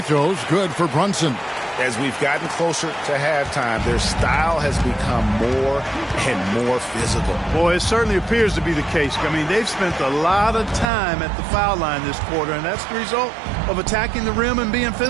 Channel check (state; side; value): drops out; left; at 10.9 s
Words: throws good for Brunson. As we've gotten closer to halftime, their style has become more and more physical. Boy, it certainly appears to be the case. I mean, they've spent a lot of time at the foul line this quarter, and that's the result of attacking the rim and being